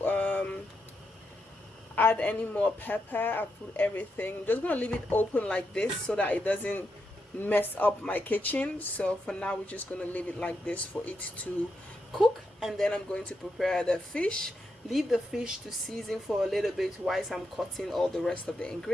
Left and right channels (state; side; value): normal; both; correlation 0.83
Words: add any more pepper. I put everything. I'm just gonna leave it open like this so that it doesn't mess up my kitchen. So for now we're just gonna leave it like this for it to cook, and then I'm going to prepare the fish. Leave the fish to season for a little bit whilst I'm cutting all the rest of the